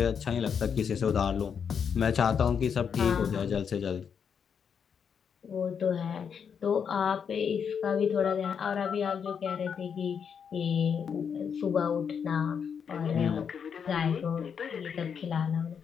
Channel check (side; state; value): right; quieter; 7.1 dB